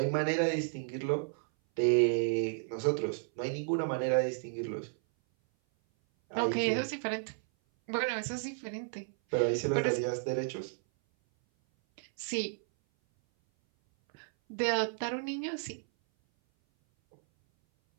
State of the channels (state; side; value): silent; left; 56 dB below the other